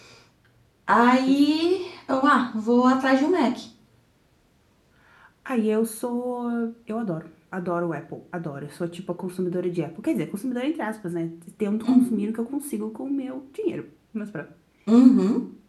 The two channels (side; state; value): both; identical; correlation 1.00